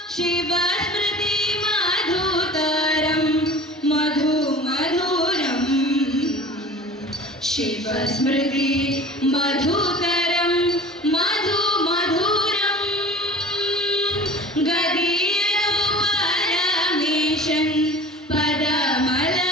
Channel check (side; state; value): both; normal; correlation 0.41